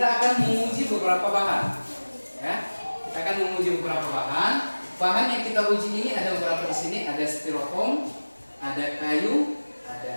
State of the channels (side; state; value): both; inverted; correlation -1.00